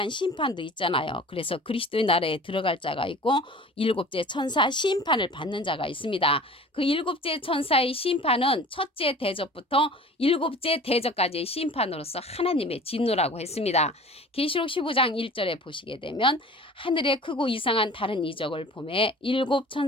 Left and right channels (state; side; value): normal; both; correlation 0.43